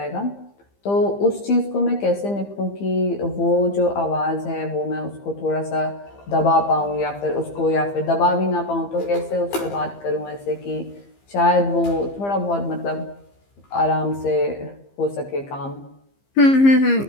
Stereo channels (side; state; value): right; late; 15 ms